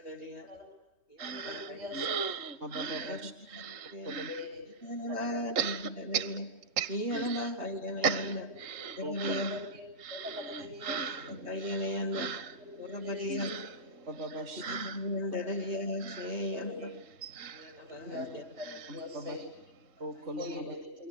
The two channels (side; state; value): left; late; 3.2 ms